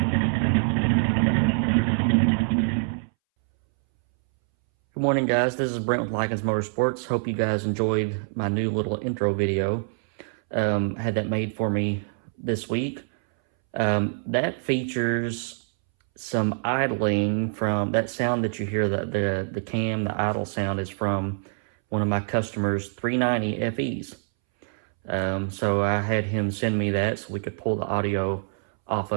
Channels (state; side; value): silent; left; 62 dB below the other